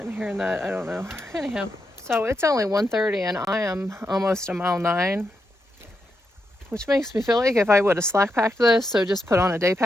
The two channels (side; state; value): both; normal; correlation 0.84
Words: hearing that, I don't know. Anyhow, so it's only 1:30 and I am almost a mile 9, which makes me feel like if I would have slack packed this, so just put on a day